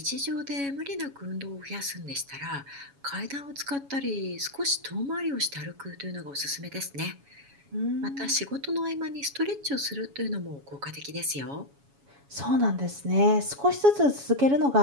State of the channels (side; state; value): left; late; 7.2 ms